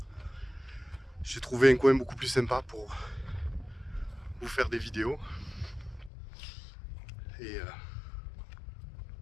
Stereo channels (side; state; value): right; drops out; at 6.1 s